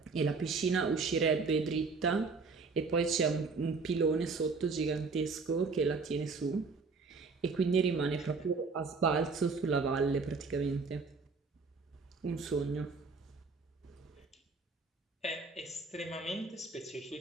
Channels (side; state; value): left; quieter; 4.4 dB